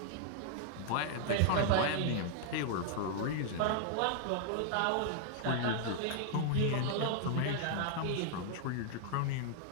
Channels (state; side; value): different; both; correlation -0.01